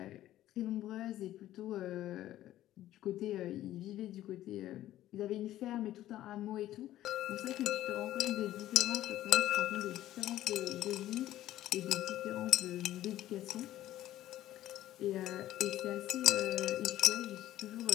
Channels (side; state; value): right; quieter; 13.8 dB